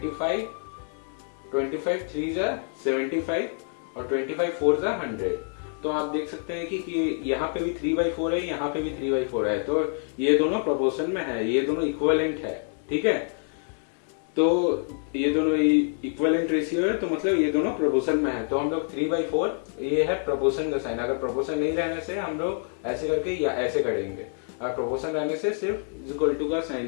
3 75 और 25 4 100. तो आप देख सकते हैं कि यहाँ पे भी 3/4 है, यहाँ पे भी 3/4 है. तो ये दोनों प्रोपोर्शन में है, ये दोनों इक्विवेलेंट है. ठीक है. तो ये दोनों इक्विवेलेंट रेशियो है, तो मतलब ये दोनों प्रोपोर्शन में है. तो हम लोग 3/4 ये है प्रोपोर्शन का साइन. अगर प्रोपोर्शन नहीं रहने से हम लोग ऐसे करके या ऐसे करेंगे, और प्रोपोर्शन रहने से सिर्फ इक्वल टू का साइन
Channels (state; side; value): silent; right; 57 dB below the other